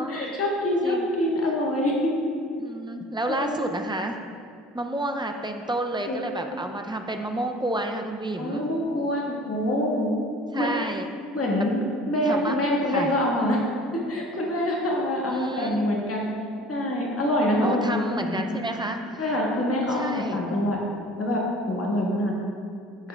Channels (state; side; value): normal; both; correlation 0.46